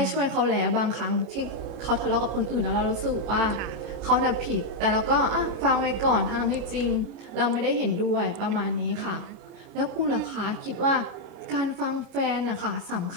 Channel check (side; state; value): left; late; 29 ms